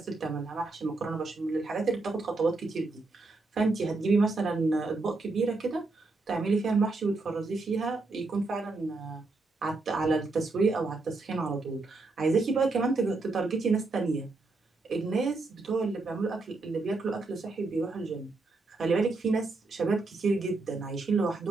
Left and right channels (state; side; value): quieter; left; 3.5 dB